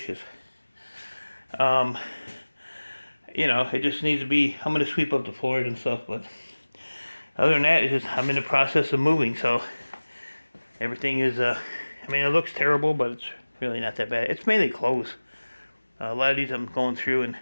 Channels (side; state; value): both; inverted; correlation -1.00